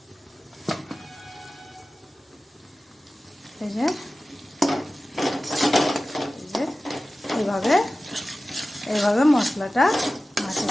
এই যে এইভাবে এইভাবে মশলাটা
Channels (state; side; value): normal; both; correlation 0.95